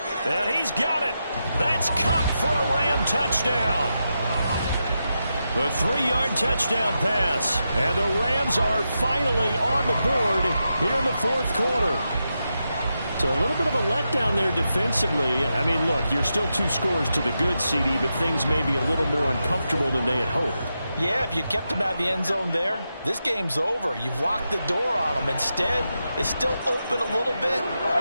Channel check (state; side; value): inverted; both; correlation -0.87